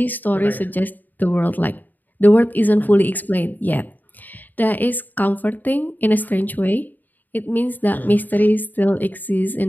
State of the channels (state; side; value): late; right; 0.086 ms